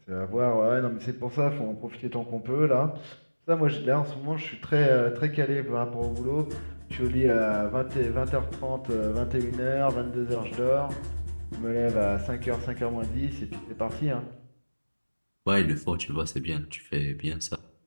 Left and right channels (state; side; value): inverted; both; correlation -1.00